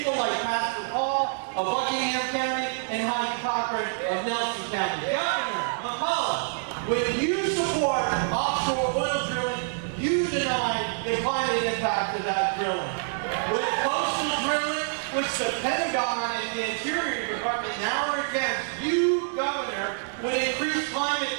like Pastor Paul of Buckingham County and Heidi Cochran of Nelson County. Governor McAuliffe, when you support offshore oil drilling, you deny the climate impact of that drilling. With coastal drilling, which the Pentagon and the Interior Department now are against, you, Governor, would increase climate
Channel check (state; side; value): silent; left; digital silence